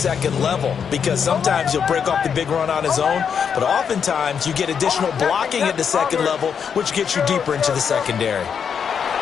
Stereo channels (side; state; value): right; quieter; 7.1 dB